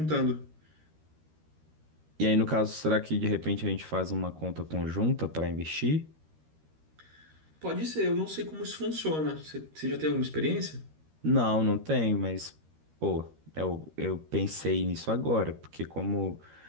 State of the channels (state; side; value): late; left; 13 ms